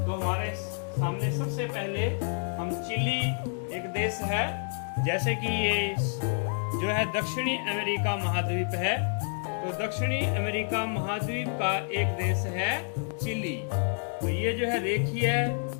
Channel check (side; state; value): right; silent; 59 dB below the other